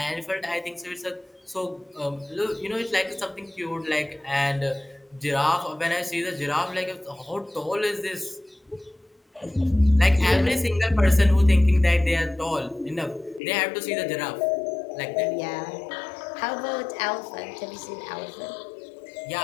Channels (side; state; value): right; drops out; at 13.4 s